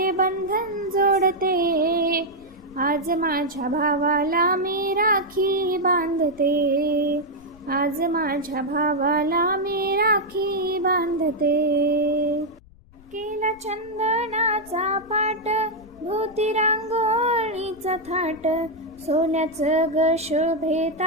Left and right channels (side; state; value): left; noise; rumble, 25 dB below the sound